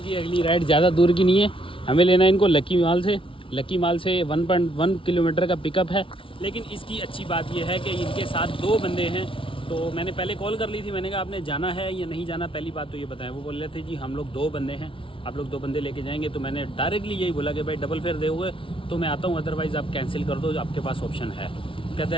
है। अगली राइड ज़्यादा दूर की नहीं है, हमें लेना है इनको लकी माल से 1.1 किलोमीटर का पिकअप है। लेकिन इसकी अच्छी बात यह है कि इनके साथ 2 बंदे हैं। तो मैंने पहले कॉल कर ली थी, मैंने कहा आपने जाना है या नहीं जाना, पहली बात तो ये बताएं। वो बोल रहे थे जी हम लोग 2 बंदे हैं, आप लोग 2 बंदे लेके जाएंगे। तो मैंने डायरेक्टली यही बोला कि भाई डबल फेयर दोगे तो मैं आता हूँ, अदरवाइज़ आप कैंसिल कर दो, आपके पास ऑप्शन है। कहता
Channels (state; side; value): late; right; 0.25 ms